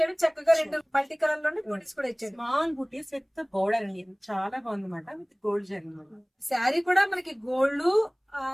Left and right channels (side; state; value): both; identical; correlation 1.00